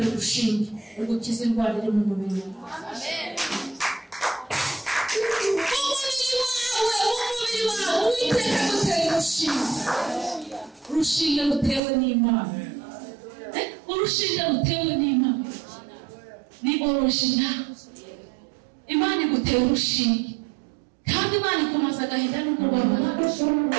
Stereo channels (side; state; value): left; drops out; at 11.8 s